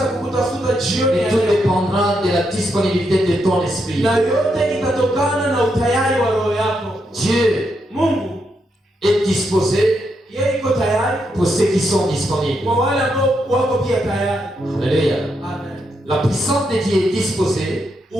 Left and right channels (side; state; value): both; normal; correlation 0.81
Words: Et tout dépendra de la disponibilité de ton esprit. Dieu est disposé pour ceux qui sont disponibles. Alléluia. La puissance de Dieu est disposée